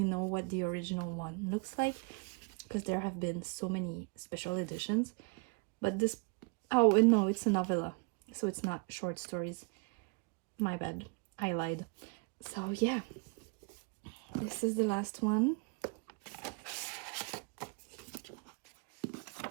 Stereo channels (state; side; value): quieter; left; 32.2 dB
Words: know what the original one looks like because there have been so many special editions. But this, oh, and no, it's a novella, so it's not short stories. My bad, I lied. So yeah, this is the last one.